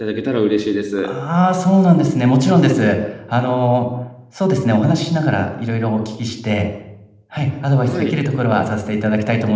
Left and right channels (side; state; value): both; identical; correlation 1.00